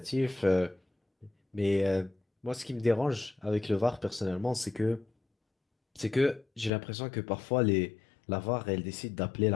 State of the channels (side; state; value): right; drops out; at 6.7 s